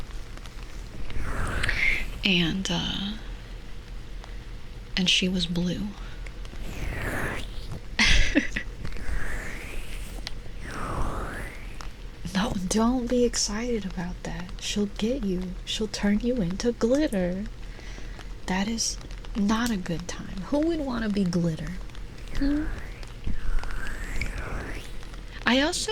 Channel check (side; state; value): both; identical; correlation 1.00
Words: And she was blue. No, don't be excited about that. She'll get you. She'll turn you into glitter. That is not a good time. Who would want to be glitter? I also